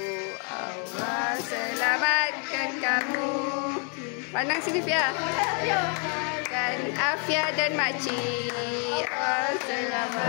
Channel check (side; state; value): right; quieter; 39.6 dB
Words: Allah selamatkan kamu. Pandang sini Fia. Dan Afia dan makcik. Allah